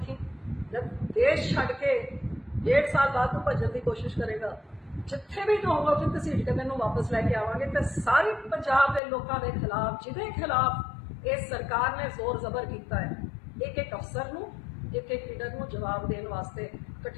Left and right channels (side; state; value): right; drops out; at 9.0 s